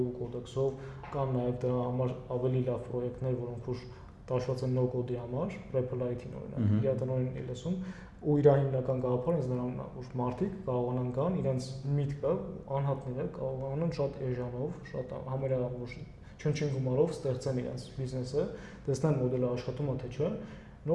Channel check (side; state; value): both; identical; correlation 1.00